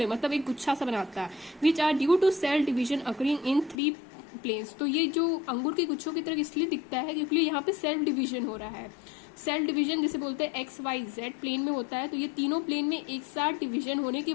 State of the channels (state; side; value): drops out; right; at 3.8 s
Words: मतलब एक गुच्छा सा बनाता है. Which are due to cell division occurring in 3 planes. तो ये जो अंगूर के गुच्छों की तरह इसलिए दिखता है क्योंकि यहाँ पे सेल डिवीजन हो रहा है. सेल डिवीजन जिसे बोलते हैं एक्स वाई जेड प्लेन में होता है. तो ये तीनों प्लेन में एक साथ डिवीजन होने की